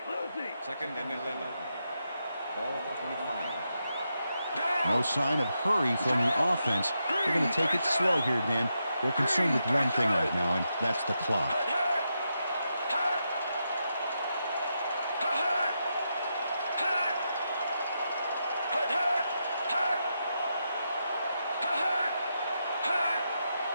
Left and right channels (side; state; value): both; inverted; correlation -0.84